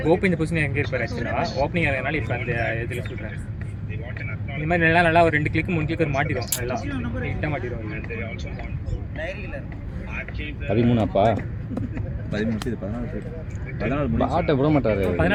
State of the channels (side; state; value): both; identical; correlation 1.00